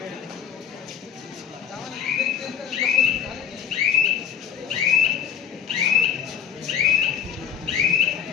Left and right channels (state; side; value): quieter; right; 8.5 dB